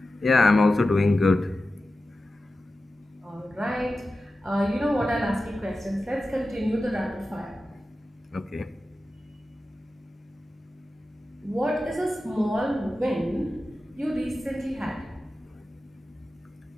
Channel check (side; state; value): both; normal; correlation 0.93